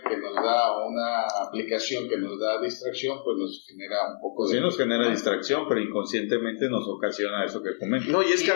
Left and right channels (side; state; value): right; silent; 60 dB below the other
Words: que nos da, o una aplicación que nos da distracción, pues nos genera un poco de... Sí, nos genera distracción, pero inconscientemente nos ocasiona eso que comentas. No, y es que